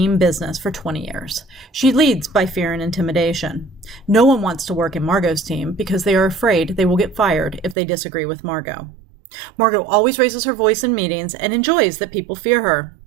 business for 20 years. She leads by fear and intimidation. No one wants to work in Margot's team because they are afraid they will get fired if they disagree with Margot. Margot always raises her voice in meetings and enjoys that people fear her.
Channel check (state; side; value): drops out; left; at 7.8 s